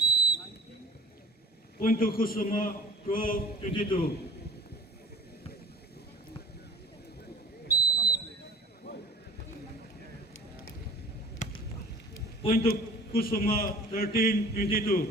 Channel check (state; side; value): normal; both; correlation 0.45